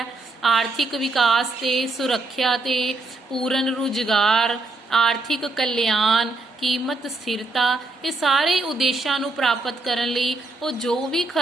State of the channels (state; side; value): quieter; left; 3.2 dB